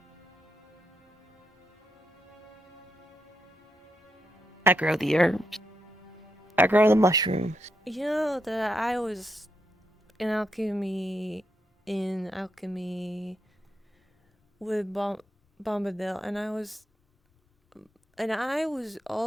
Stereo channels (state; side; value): normal; both; correlation 0.81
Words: I grow the herbs. I grow the mushrooms. You know that I was in alchemy with Bombadil, and I was